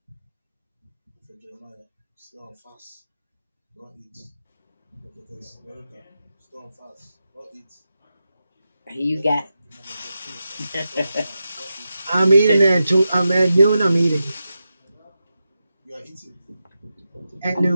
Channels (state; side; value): inverted; both; correlation -0.90